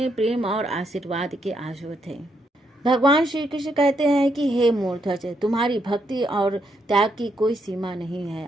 प्रेम और आशीर्वाद के आंसू थे। भगवान श्री कृष्ण कहते हैं कि हे मूर्धज, तुम्हारी भक्ति और त्याग की कोई सीमा नहीं है।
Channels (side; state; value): both; normal; correlation 0.77